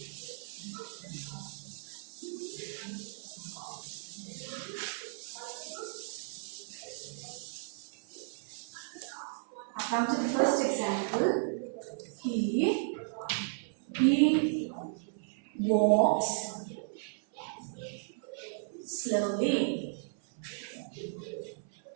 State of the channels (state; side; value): silent; left; 55 dB below the other